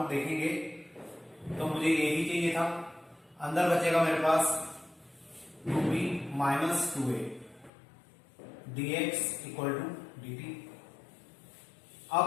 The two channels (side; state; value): right; drops out; at 7.7 s